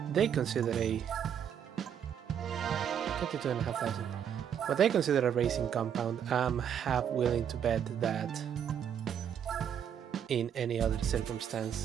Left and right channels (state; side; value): quieter; left; 8.7 dB